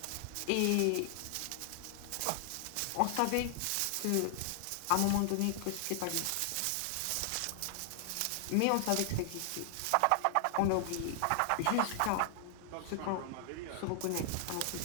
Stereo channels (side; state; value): both; different; correlation 0.00